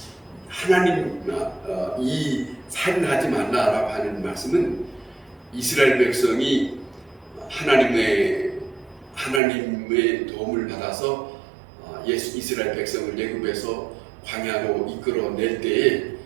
하나님 이 살인하지 말라라고 하는 말씀은 이스라엘 백성이 하나님의 도움을 받아서 이스라엘 백성을 애굽에서 광야로 이끌어낼 때에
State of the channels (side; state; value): left; drops out; at 9.4 s